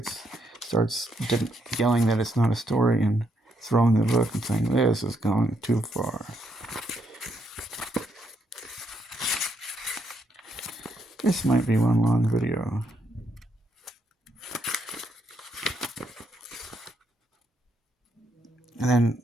starts yelling that it's not a story and throwing the book and saying, "This is going too far." This might be one long video. And then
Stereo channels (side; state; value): both; normal; correlation 0.76